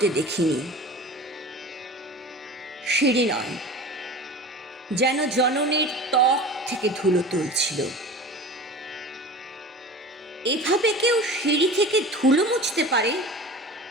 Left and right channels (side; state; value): both; normal; correlation 0.36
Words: দেখিনি। সিঁড়ি নয়, যেন জননীর ত্বক থেকে ধুলো তুলছিল। এভাবে কেউ সিঁড়ি থেকে ধুলো মুছতে পারে